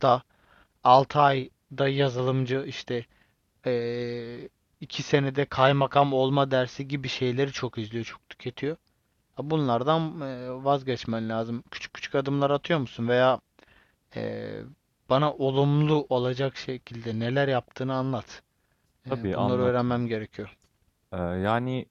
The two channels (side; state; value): both; identical; correlation 1.00